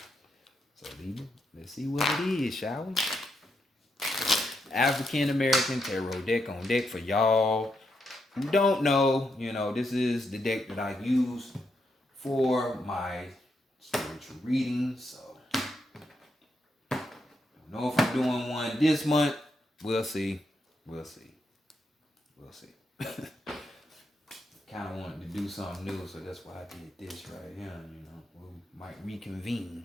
So, Libra, let's see what it is, shall we? African American Tarot deck on deck for y'all who don't know. You know, this is the deck that I use for my spiritual readings. So, I don't know if I'm doing one this month. We'll see. We'll see. We'll see. Kind of wanted to do something new, so that's why I did this right here. You know, we might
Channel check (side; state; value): both; normal; correlation 0.81